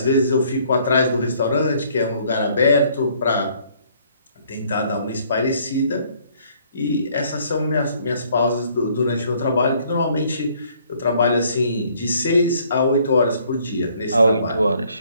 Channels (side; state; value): both; inverted; correlation -0.63